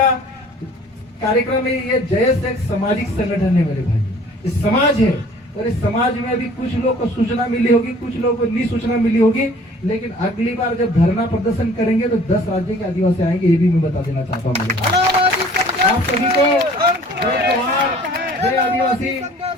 कार्यक्रम है। ये जयस एक सामाजिक संगठन है मेरे भाई, ये समाज है और इस समाज में अभी कुछ लोग को सूचना मिली होगी, कुछ लोगों को नहीं सूचना मिली होगी। लेकिन अगली बार जब धरना प्रदर्शन करेंगे तो 10 राज्य के आदिवासी आएंगे, ये भी मैं बता देना चाहता हूँ। आप सभी को जय जोहार, जय आदिवासी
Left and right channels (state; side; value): normal; both; correlation 0.51